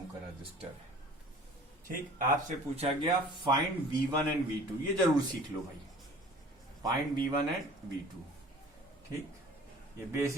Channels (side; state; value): both; normal; correlation 0.47